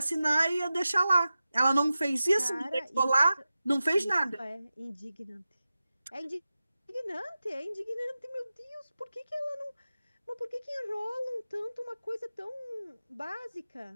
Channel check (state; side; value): inverted; both; correlation -0.94